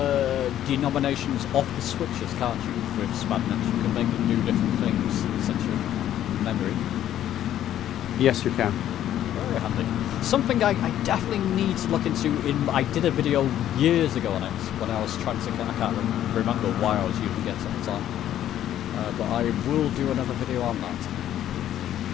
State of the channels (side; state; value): right; quieter; 11.6 dB